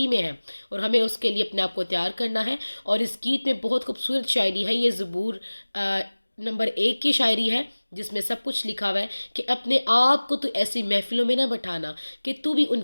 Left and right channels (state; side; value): inverted; both; correlation -1.00